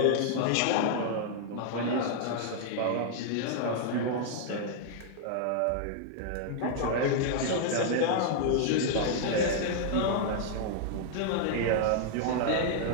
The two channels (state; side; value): different; both; correlation -0.01